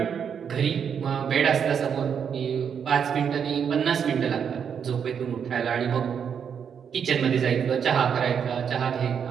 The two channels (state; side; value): quieter; left; 7.4 dB